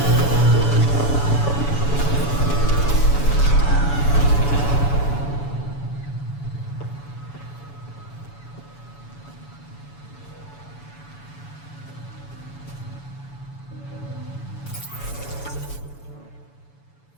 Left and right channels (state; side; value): late; right; 7.0 ms